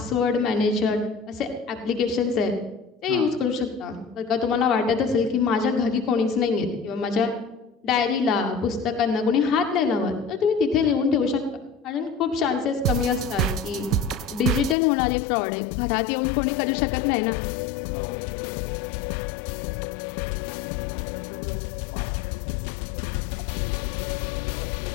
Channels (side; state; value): right; drops out; at 14.8 s